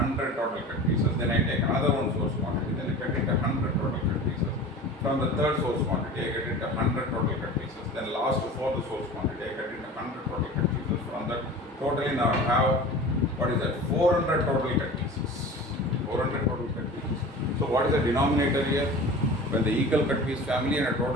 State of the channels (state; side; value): normal; both; correlation 0.37